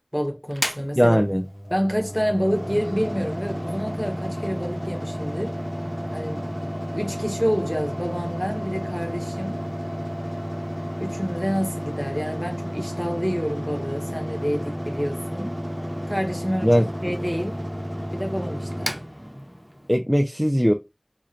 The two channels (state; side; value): identical; both; correlation 1.00